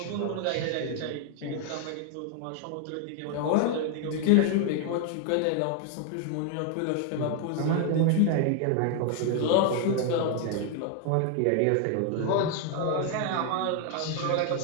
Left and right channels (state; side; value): different; both; correlation 0.00